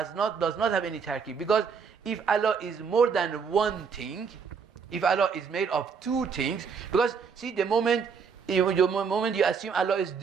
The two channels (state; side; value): quieter; left; 6.0 dB